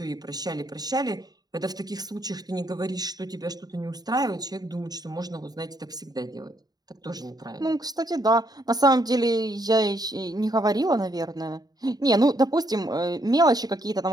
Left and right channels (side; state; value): left; late; 0.19 ms